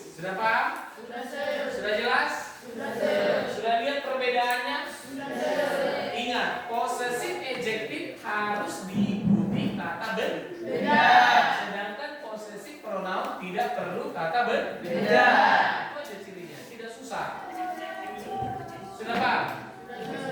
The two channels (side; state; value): both; identical; correlation 1.00